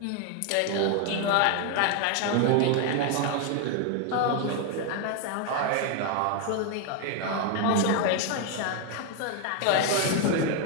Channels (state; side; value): different; both; correlation 0.00